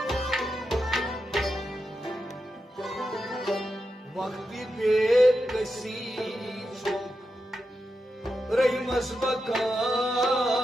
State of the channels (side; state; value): both; normal; correlation 0.88